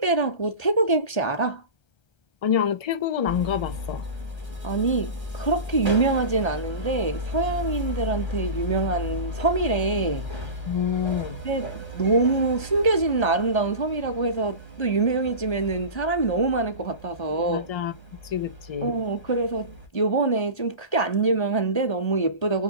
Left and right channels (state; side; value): late; right; 1.3 ms